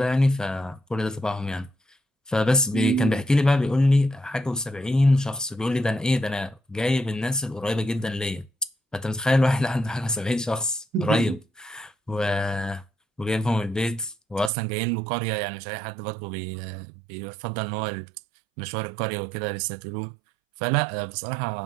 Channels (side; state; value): left; drops out; at 14.5 s